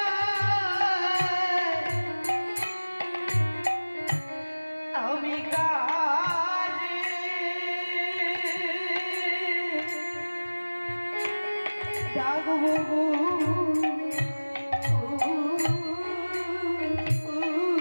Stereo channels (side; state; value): both; inverted; correlation -1.00